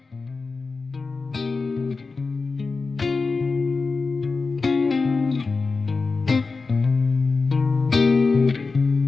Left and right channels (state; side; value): quieter; right; 4.2 dB